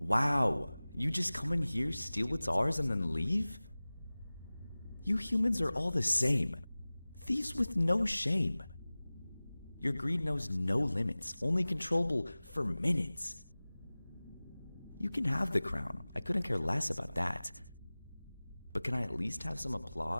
Wow, you just come in here, steal what's ours, and then leave? You humans are all the same. Thieves with no shame. Your greed knows no limits, only controllable for minutes. You can have the crown, I couldn't care less about that. But can I at least have some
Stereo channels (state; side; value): inverted; both; correlation -0.99